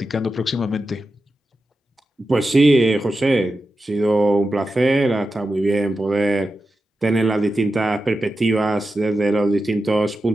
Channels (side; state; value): both; normal; correlation 0.91